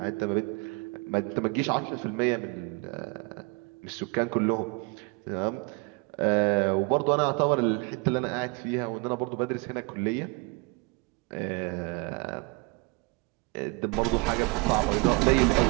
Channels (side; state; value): left; quieter; 28.1 dB